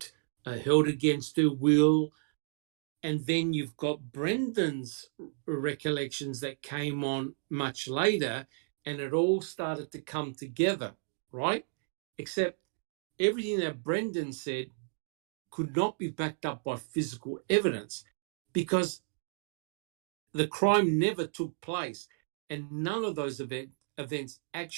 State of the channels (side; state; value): left; silent; digital silence